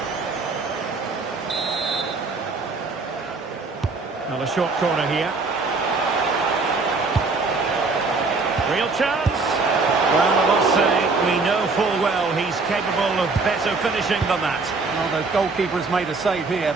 Now the short corner here. Real chance. Well, I must say, we know full well he's capable of better finishing than that. Well, the goalkeeper has made a save here,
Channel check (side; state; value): left; quieter; 3.9 dB